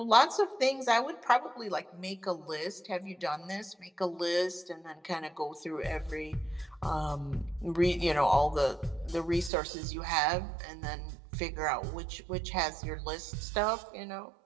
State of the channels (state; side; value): drops out; left; at 9.5 s